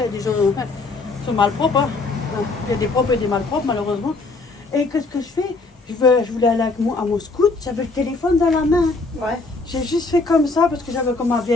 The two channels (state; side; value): quieter; right; 3.7 dB